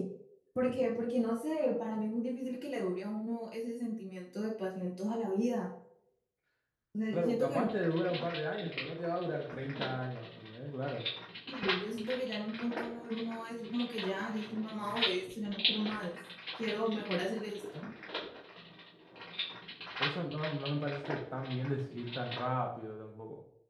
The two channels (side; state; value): both; identical; correlation 1.00